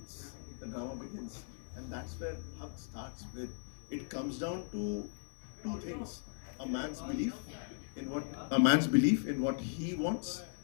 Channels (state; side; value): silent; right; 53 dB below the other